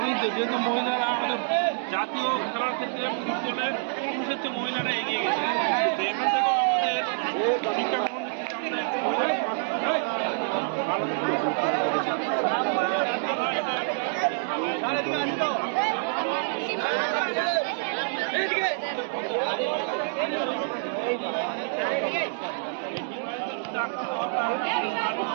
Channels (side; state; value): left; silent; digital silence